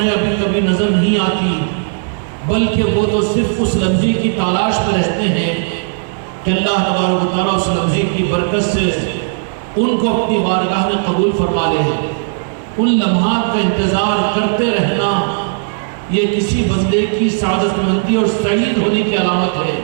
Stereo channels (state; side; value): silent; left; digital silence